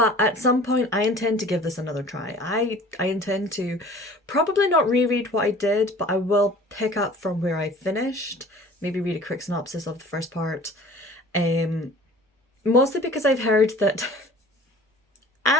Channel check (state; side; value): normal; both; correlation 0.47